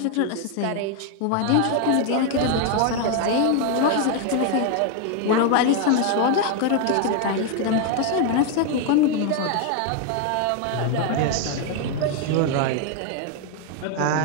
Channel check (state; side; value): different; both; correlation 0.01